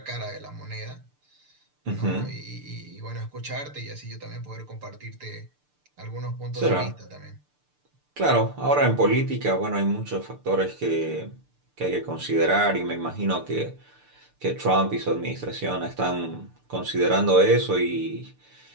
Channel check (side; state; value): left; late; 6.8 ms